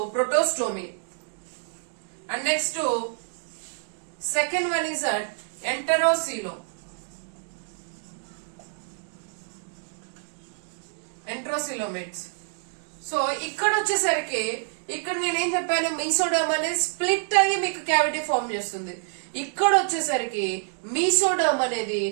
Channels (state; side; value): silent; left; digital silence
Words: protostome. And next second one is enterocoelom. Enterocoelomates. So ఇక్కడ వచ్చేసరికి ఇక్కడ నేనేం చెప్పాను, మీసోడమ్ అనేది స్ప్లిట్ అయ్యి మీకు క్యావిటీ ఫామ్ చేస్తుంది. ఇక్కడ వచ్చేసరికి మీసోడమ్ అనేది